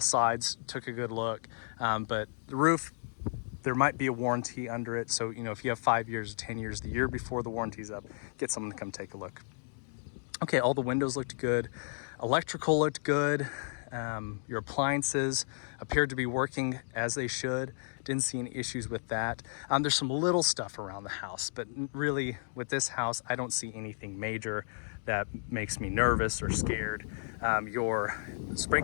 sides, took a good look. But the roof, there might be a warranty under it. So, if you have 5 years or 10 years, the year before the warranty's up, get someone to come take a look. Okay, all the windows looked good. Electrical looked good. Your appliances appeared to be working as they should. Didn't see any issues with that. There's some little stuff around the house, but really with this house, I don't see anything major that makes me nervous or scared. Your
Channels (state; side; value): silent; right; digital silence